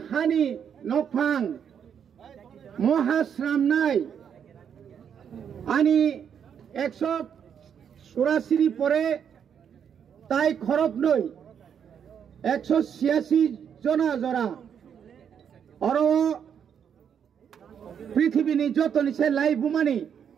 হানি নকফাং মহাশ্রামনাই আনি 184 পরে তাই খরব নই 186 জনা জরা আর পৃথিবীনি যত নিছে লাই বুমানি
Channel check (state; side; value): quieter; left; 8.0 dB